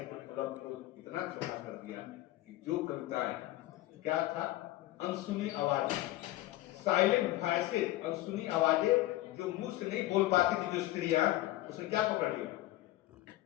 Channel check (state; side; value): quieter; right; 16.7 dB